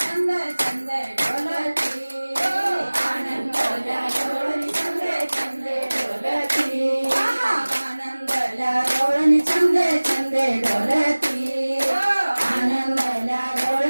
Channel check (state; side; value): inverted; both; correlation -1.00